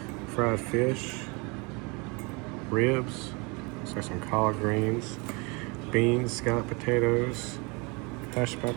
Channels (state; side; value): quieter; left; 29.2 dB